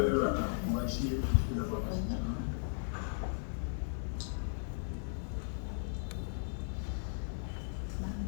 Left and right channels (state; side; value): silent; right; digital silence